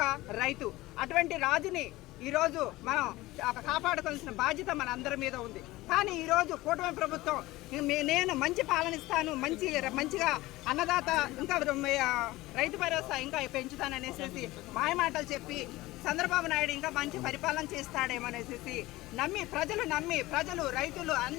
రైతు. అటువంటి రాజుని ఈరోజు మనం కాపాడుకోవాల్సిన బాధ్యత మన అందరి మీద ఉంది. కానీ ఈరోజు కూటమి ప్రభుత్వం నేను మంచి పాలనిస్తాను, మంచిగా అన్నదాత ఇంకా రైతు భరోసా ఇంకా పెంచుతాననేసి మాయమాటలు చెప్పి చంద్రబాబు నాయుడు ఇంకా మంచి పరిపాలన చేస్తాడేమనేసి ప్రజలు రైతులు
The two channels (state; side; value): quieter; right; 18.8 dB